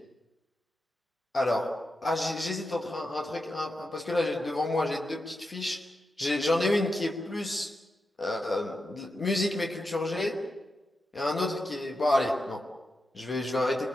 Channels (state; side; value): normal; both; correlation 0.88